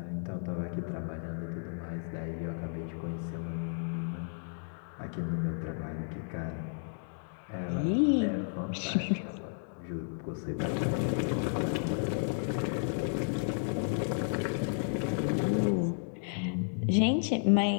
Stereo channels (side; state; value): right; silent; digital silence